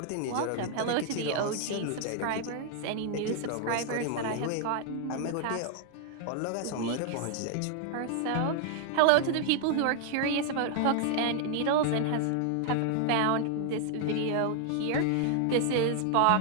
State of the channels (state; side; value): different; both; correlation 0.00